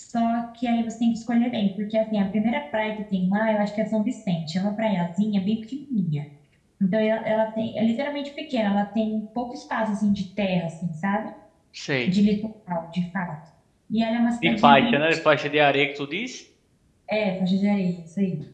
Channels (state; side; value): identical; both; correlation 1.00